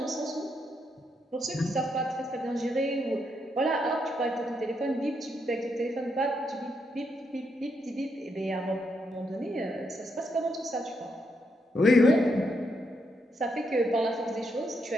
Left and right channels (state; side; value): normal; both; correlation 0.79